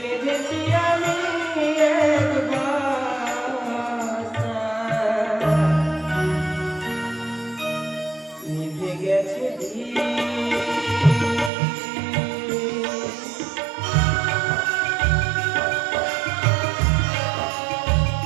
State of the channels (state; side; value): drops out; left; at 11.5 s